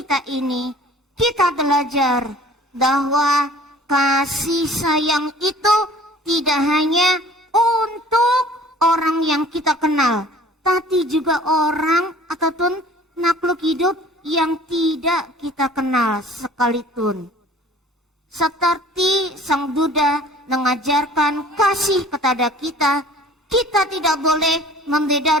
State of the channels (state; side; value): normal; both; correlation 0.49